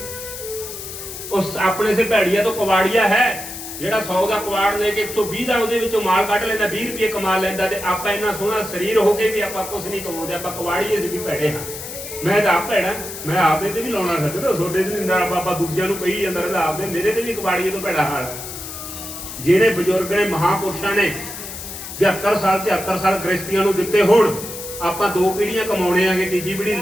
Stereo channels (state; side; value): noise; left; hiss, 10 dB below the sound